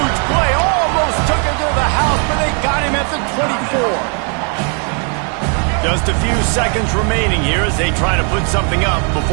play. Almost took him to the house, but they got him at the 24. Just a few seconds remaining here as they try to put something up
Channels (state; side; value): quieter; left; 39.8 dB